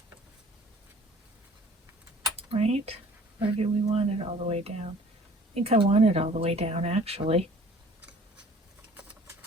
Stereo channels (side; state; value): both; normal; correlation 0.51